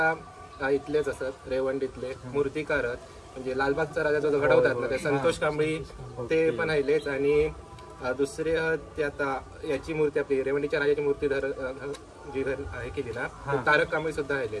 इथलेच असत, रेवंडीतले मूर्तिकार म्हणजे लालबागचा राजा जो घडवतात ना ते संतोष कांबळी ते पण आहेलेच। आणि दुसरे ते आता याची मूर्ती आपली रेवंडीच्या राजाची मूर्ती जी आहे केली ना, तारक कांबळी सुद्धा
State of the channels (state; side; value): identical; both; correlation 1.00